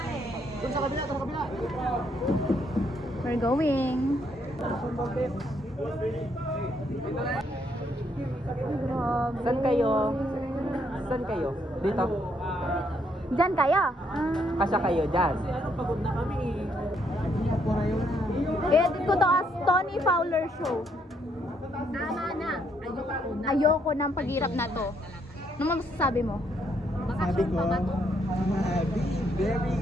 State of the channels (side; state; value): both; normal; correlation 0.72